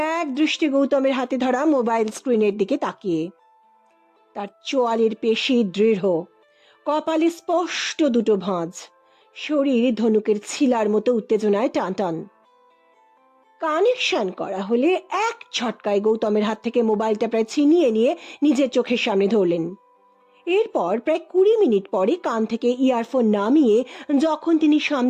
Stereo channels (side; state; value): both; identical; correlation 1.00